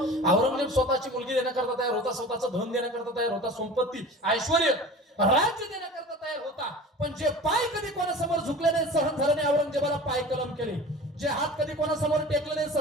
औरंगजेब स्वतःची मुलगी देण्याकरता तयार होता, स्वतःचं धन देण्याकरता तयार होता, संपत्ती ऐश्वर राज्य देण्याकरता तयार होता, पण जे पाय कधी कोणासमोर झुकले नाही, सहन झालं नाही, औरंगजेबाला पाय कलम केले. जे हात कधी कोणासमोर टेकले नाही,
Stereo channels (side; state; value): both; normal; correlation 0.38